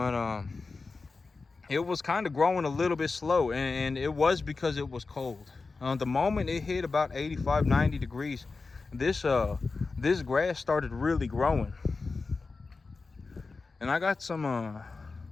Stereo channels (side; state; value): right; quieter; 4.1 dB